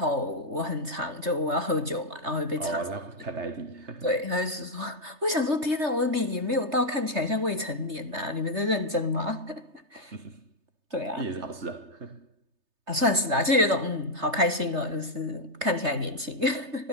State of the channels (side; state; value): left; late; 3.3 ms